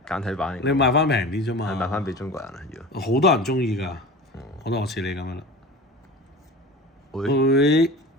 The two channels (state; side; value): normal; both; correlation 0.35